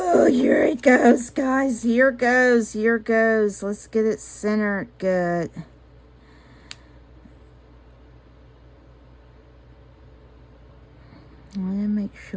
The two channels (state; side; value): identical; both; correlation 1.00